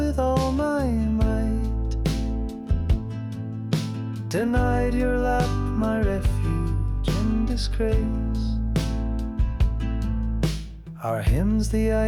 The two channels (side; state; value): both; identical; correlation 1.00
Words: all my might, denied your lap my refuge in disgrace. Our hymns the